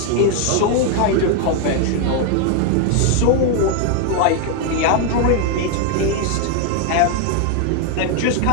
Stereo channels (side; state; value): both; different; correlation 0.01